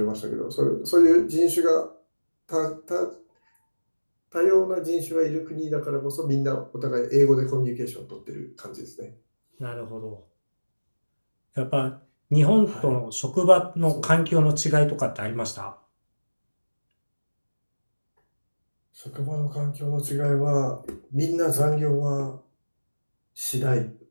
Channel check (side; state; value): both; inverted; correlation -1.00